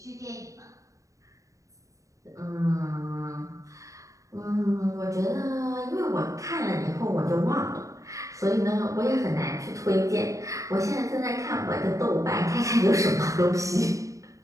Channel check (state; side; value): late; left; 0.16 ms